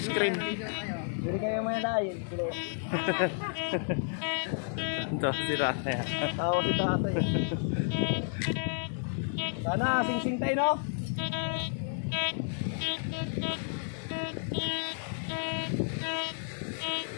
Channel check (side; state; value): right; silent; 57 dB below the other